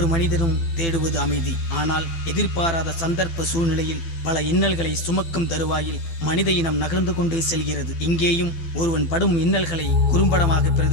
மனிதரும் தேடுவது அமைதி. ஆனால் எதிர்பாராத சந்தர்ப்ப சூழ்நிலையில் பல இன்னல்களை சுமக்கும் தருவாயில் மனித இனம் நகர்ந்து கொண்டே செல்கிறது. இங்கேயும் ஒருவன் படும் இன்னல்களை குறும்படமாக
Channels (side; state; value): right; late; 12 ms